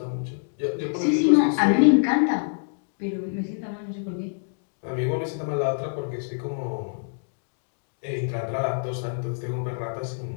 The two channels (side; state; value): right; silent; digital silence